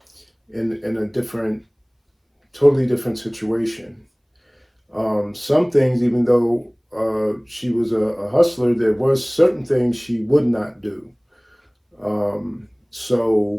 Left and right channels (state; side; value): identical; both; correlation 1.00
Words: totally different situation. Some things, even though she was a hustler, there was certain things she would not do.